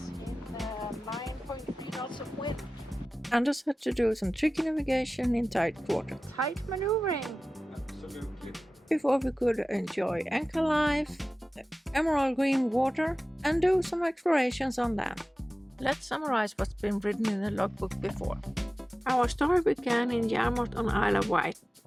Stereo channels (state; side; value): normal; both; correlation 0.96